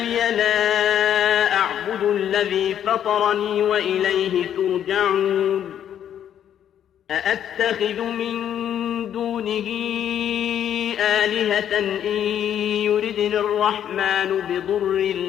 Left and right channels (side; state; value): right; quieter; 9.8 dB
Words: لا أعبد الذي فطرني وإليه ترجعون. أأتخذ من دونه آلهة إن يردني الرحمن بضر